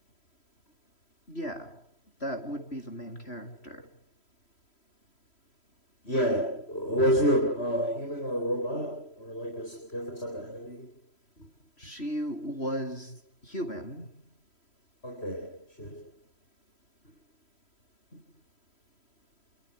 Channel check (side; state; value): right; late; 3.1 ms